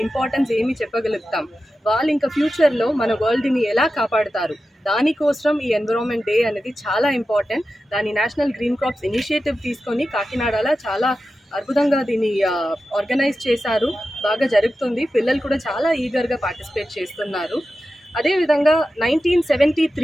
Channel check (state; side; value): normal; both; correlation 0.92